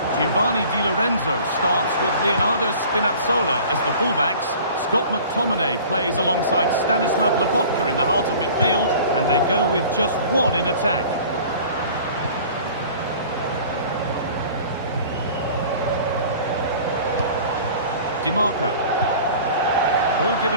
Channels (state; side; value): inverted; both; correlation -0.45